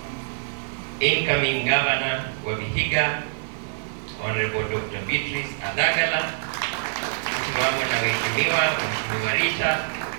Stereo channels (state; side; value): silent; left; 62 dB below the other